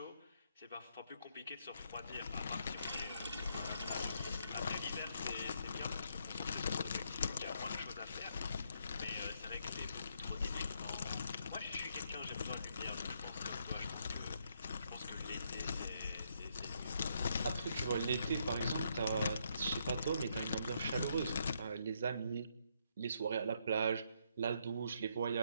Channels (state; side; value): inverted; both; correlation -0.74